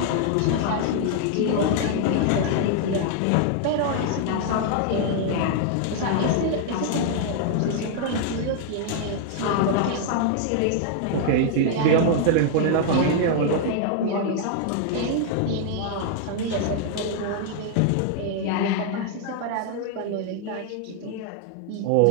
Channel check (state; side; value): different; both; correlation 0.00